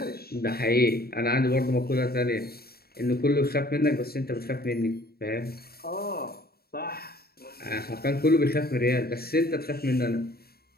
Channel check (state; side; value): late; right; 0.45 ms